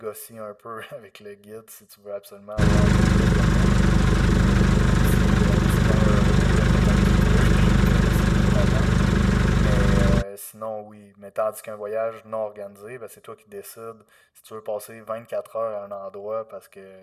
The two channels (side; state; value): both; identical; correlation 1.00